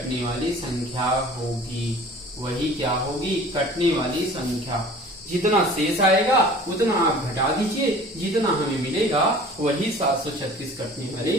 वाली संख्या होगी। वही क्या होगी? कटने वाली संख्या। जितना शेष आएगा उतना आप घटा दीजिए, जितना हमें मिलेगा वही 736 कटने वाली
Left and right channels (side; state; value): both; normal; correlation 0.45